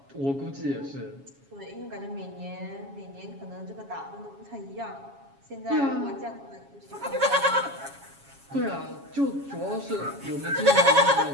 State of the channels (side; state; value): left; late; 7.2 ms